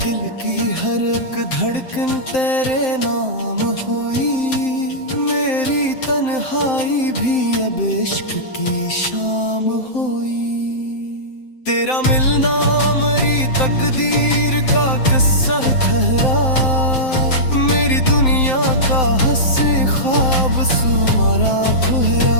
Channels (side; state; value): right; late; 7.7 ms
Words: की हर एक धड़कन तेरे नाम हुई, मेरी तन्हाई भी अब इश्क की शाम हुई। तेरा मिलना मेरी तकदीर का किस्सा ठहरा, मेरी दुनिया का हंसी ख्वाब सुमारा